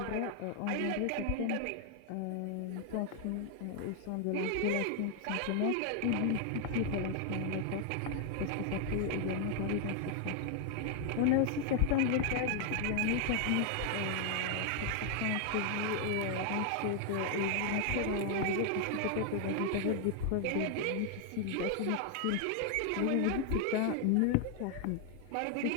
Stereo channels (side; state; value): both; different; correlation 0.00